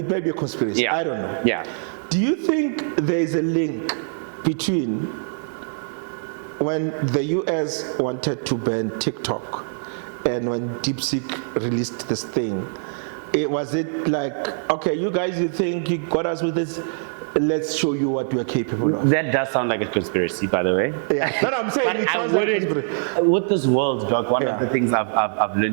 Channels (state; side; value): silent; left; digital silence